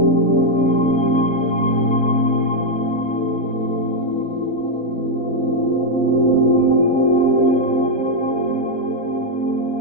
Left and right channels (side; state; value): right; late; 4.1 ms